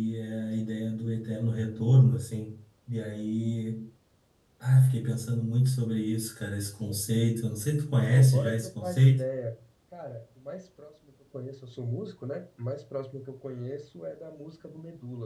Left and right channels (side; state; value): both; identical; correlation 1.00